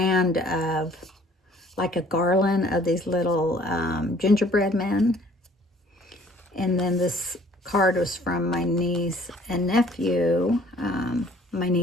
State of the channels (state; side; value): normal; both; correlation 0.56